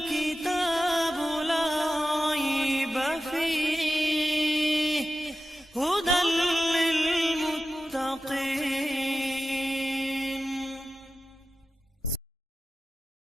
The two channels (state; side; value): normal; both; correlation 0.93